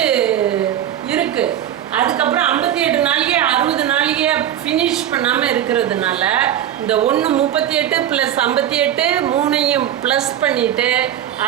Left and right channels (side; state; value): left; quieter; 10.9 dB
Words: இருக்குது. அதுக்கப்புறம் 58 நாளிகை 60 நாளிகையை ஃபினிஷ் பண்ணாமல் இருக்கிறதுனால இந்த 1:38 + 58 3ஐயும் ப்ளஸ் பண்ணிவிட்டு